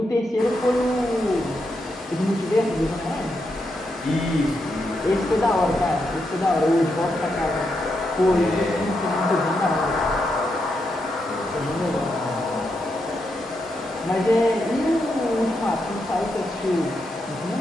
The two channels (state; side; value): normal; both; correlation 0.83